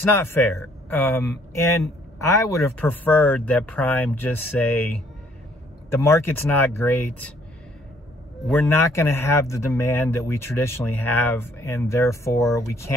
not fair. And I would have preferred that Prime just say, the market's not great. We're not going to have the demand that we traditionally have, and therefore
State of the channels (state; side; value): normal; both; correlation 0.64